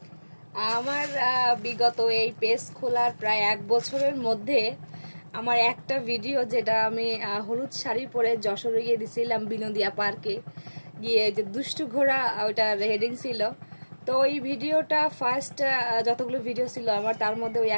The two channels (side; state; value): both; inverted; correlation -1.00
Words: আমার বিগত এই পেজ খোলার প্রায় 1 বছরের মধ্যে আমার একটা ভিডিও, যেটা আমি হলুদ শাড়ি পরে যশোরে গিয়ে দিছিলাম বিনোদিয়া পার্কে গিয়ে, যে দুষ্টু ঘোড়া, ওইটার হেডিং ছিল। তো ওই ভিডিওটা ফার্স্ট যতগুলো ভিডিও ছিল আমার, তার মধ্যে ওই